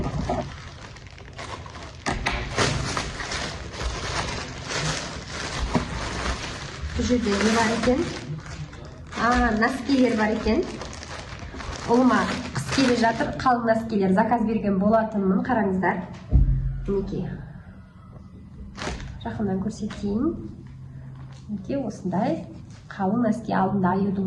Бұл жерде не бар екен? Носкилер бар екен. Олыма қыс келе жатыр, қалың носкилер заказ берген болатынмын. Қараңыздар. Мінекей. Жақындан көрсетейін. Мінекей, осындай қалың носки, алдында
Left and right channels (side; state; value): both; identical; correlation 1.00